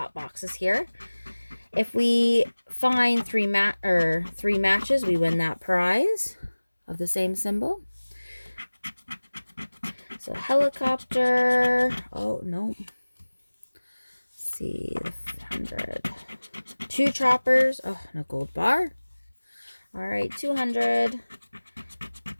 boxes here. If we find three matches, we win that prize of the same symbol. So helicopter. Oh no. Let's see, 100. Two choppers. Oh, no gold bar. All right, 200.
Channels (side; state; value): both; inverted; correlation -1.00